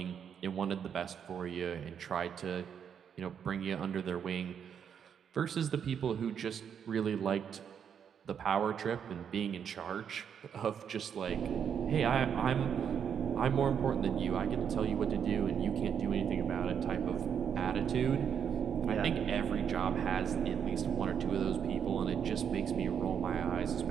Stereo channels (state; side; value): quieter; left; 7.8 dB